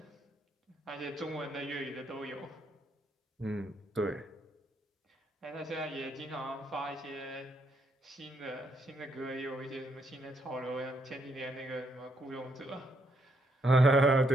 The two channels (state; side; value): normal; both; correlation 0.75